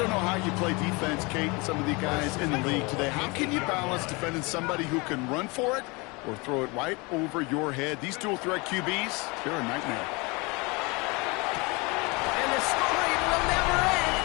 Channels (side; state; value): right; quieter; 27.0 dB